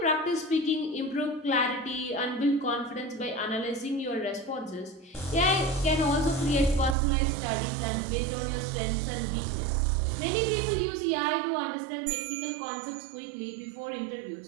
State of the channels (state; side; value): drops out; left; at 7.0 s